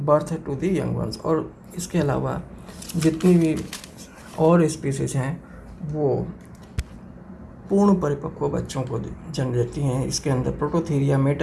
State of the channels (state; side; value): identical; both; correlation 1.00